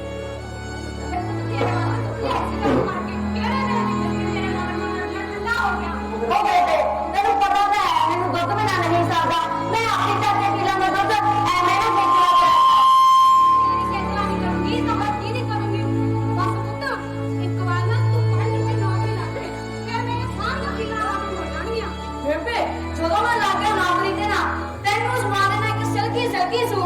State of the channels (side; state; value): both; identical; correlation 1.00